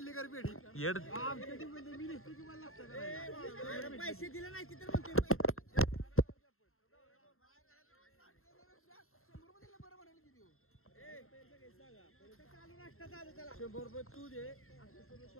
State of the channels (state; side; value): late; right; 0.62 ms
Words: कर पेढी येड आमच्या टीम मध्ये मी दिसतो तुम्हाला लागतं पैसे दिले नाही तर म्हणते तू दे